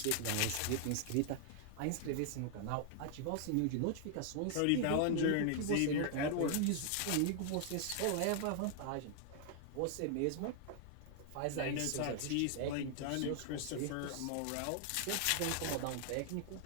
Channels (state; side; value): different; both; correlation 0.00